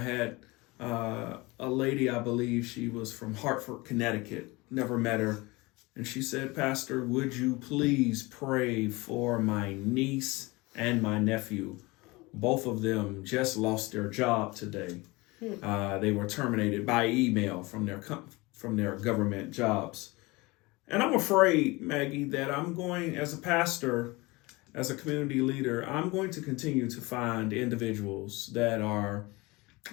had a lady, I believe she was from Hartford, Connecticut, never met her. And she said, "Pastor, would you please pray for my niece and my nephew? Both of them just lost their job today. They were terminated by email from their government jobs." And I'm afraid, Maggie, that I'm going, as a pastor, as a community leader, I'm going to continue to find individuals that are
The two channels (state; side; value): quieter; right; 23.4 dB